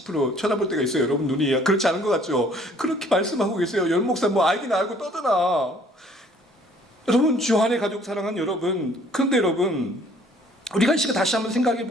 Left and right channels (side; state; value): both; normal; correlation 0.58